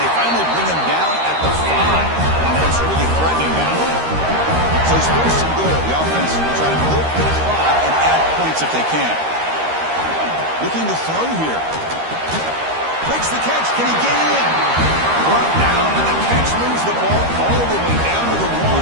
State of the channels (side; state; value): left; late; 13 ms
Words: they finally bring him down at the 5. Offense really threatening now. So it's 1st and goal. The offense will try to milk the clock and add points if they can. Looking to throw here. Breaks the catch. Can he get in? Brought down, and the catch moves the ball all the way down to the 1.